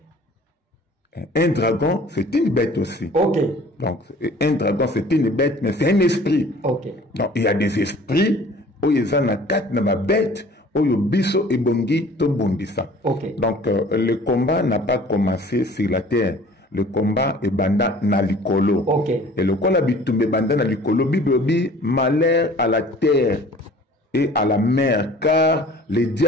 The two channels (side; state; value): both; normal; correlation 0.49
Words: Un dragon, c'est une bête aussi. Okay. Donc, un dragon, c'est une bête, mais c'est un esprit. Okay. Donc, il y a des esprits où ils ont une bête, où ils biso et bongi to bondissa. Okay. Donc, le combat n'a pas commencé sur la terre. Le combat est banda na likolo. Okay. Et le combat bitumbe banda na likolo, Bible dit malheur à la terre et à la mer, car le